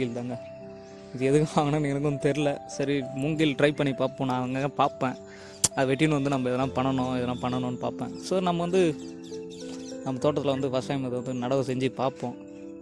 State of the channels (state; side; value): identical; both; correlation 1.00